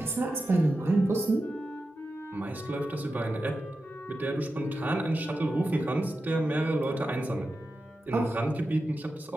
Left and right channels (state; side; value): normal; both; correlation 0.91